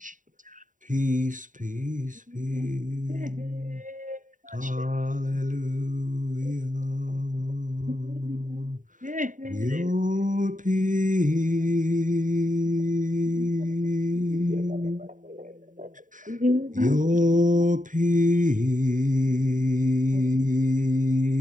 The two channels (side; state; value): left; late; 0.38 ms